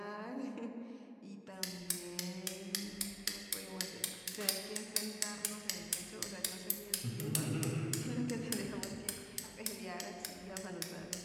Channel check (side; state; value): both; identical; correlation 1.00